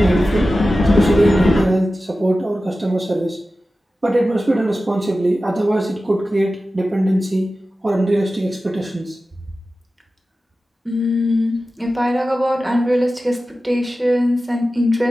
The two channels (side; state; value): both; normal; correlation 0.94